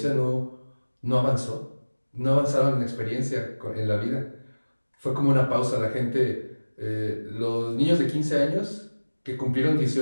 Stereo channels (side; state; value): both; inverted; correlation -1.00